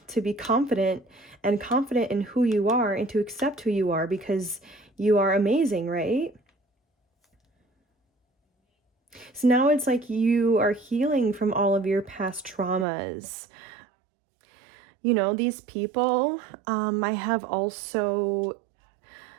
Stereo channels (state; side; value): drops out; left; at 12.9 s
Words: to be confident in who you are and to accept who you are, because you are amazing, right? So now it's like you are healing from all of your past traumas. You know, these people I have also